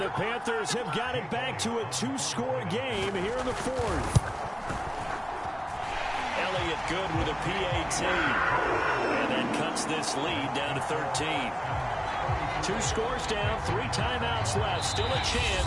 the Panthers have got it back to a 2-score game here in the fourth. Elliott good with a PAT. And that cuts this lead down to 13. 2 scores down, 3 timeouts left. Still a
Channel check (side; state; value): both; identical; correlation 1.00